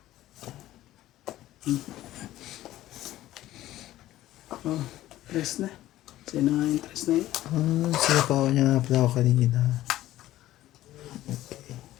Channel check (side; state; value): right; quieter; 14.7 dB